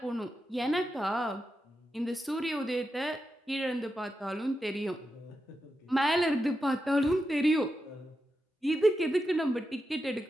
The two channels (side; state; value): both; normal; correlation 0.88